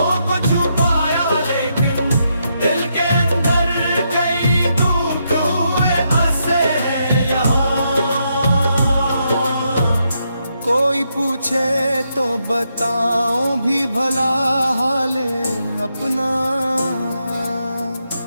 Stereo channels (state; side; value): inverted; both; correlation -0.80